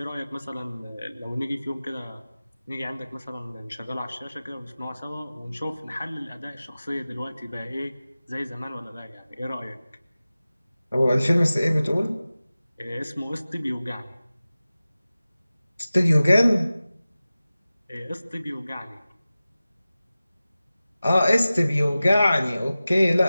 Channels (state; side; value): inverted; both; correlation -0.96